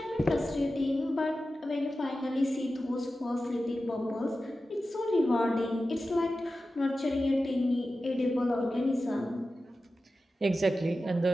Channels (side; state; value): both; normal; correlation 0.93